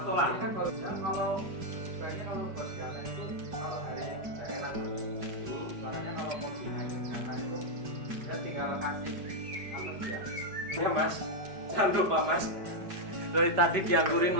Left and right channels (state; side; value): late; left; 5.1 ms